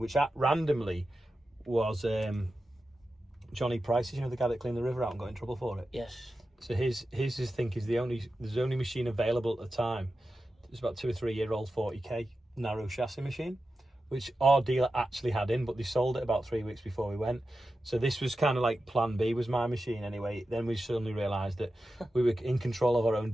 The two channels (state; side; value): normal; both; correlation 0.92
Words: randomly was Johnny Price's, you know, the guy that cleaned the river out and got in trouble for it. Yes. So his think is there's the only machine available at the time. It's about 2 or 3 year old 40k narrow chassis machine, which our dealer actually had in, but they sold it about 3 weeks before we went. So this was kind of like plan B was my machine anyway. Then we suddenly realised that we were in control of our own